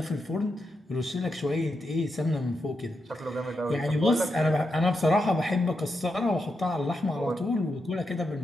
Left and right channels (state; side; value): normal; both; correlation 0.85